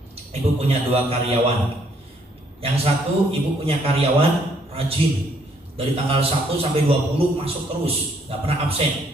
ibu punya 2 karyawan. Yang satu ibu punya karyawan rajin. Dari tanggal 1 sampai 20 masuk terus, gak pernah absen.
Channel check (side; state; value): both; normal; correlation 0.68